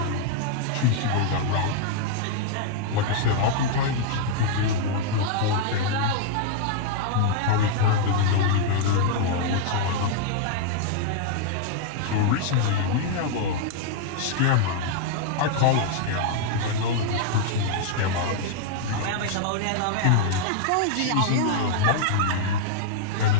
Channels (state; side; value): different; both; correlation -0.01